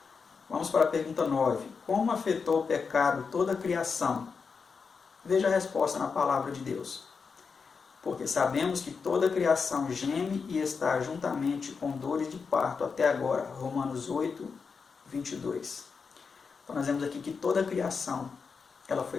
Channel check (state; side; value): quieter; right; 5.4 dB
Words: Vamos para a pergunta 9. Como afetou o pecado toda a criação? Veja a resposta na palavra de Deus. Porque sabemos que toda a criação geme e está juntamente com dores de parto até agora. Romanos 8, 22. Então nós vemos aqui que toda a criação ela